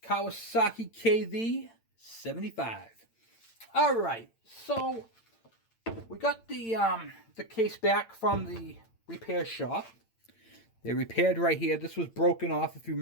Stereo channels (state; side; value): late; right; 8.8 ms